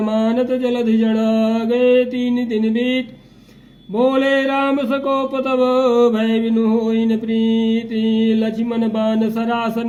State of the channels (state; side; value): identical; both; correlation 1.00